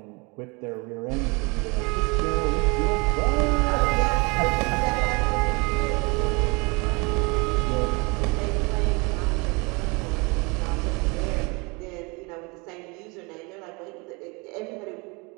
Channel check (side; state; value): left; quieter; 28.6 dB